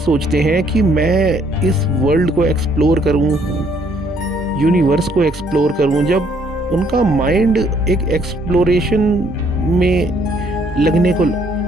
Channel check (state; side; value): normal; both; correlation 0.66